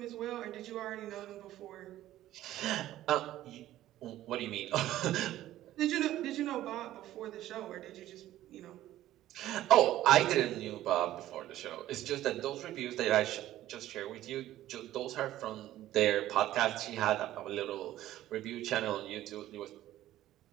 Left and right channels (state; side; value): quieter; left; 14.0 dB